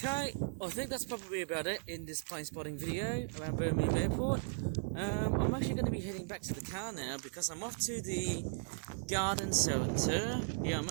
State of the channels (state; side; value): silent; left; 53 dB below the other